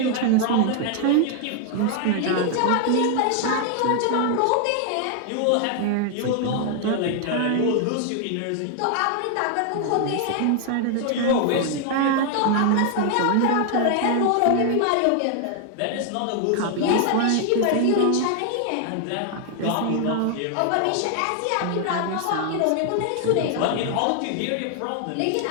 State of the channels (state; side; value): different; both; correlation 0.00